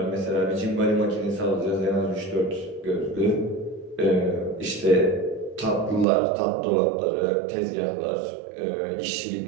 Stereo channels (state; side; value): drops out; left; at 6.1 s